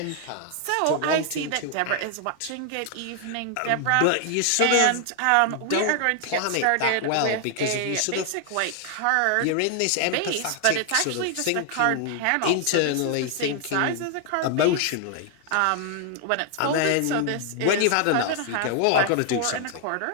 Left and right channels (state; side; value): different; both; correlation 0.00